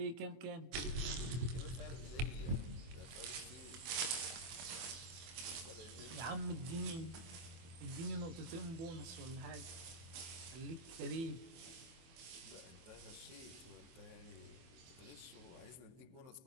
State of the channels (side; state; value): left; late; 24 ms